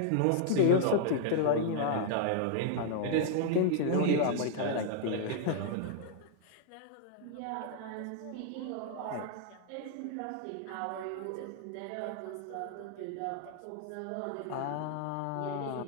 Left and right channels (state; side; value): different; both; correlation -0.01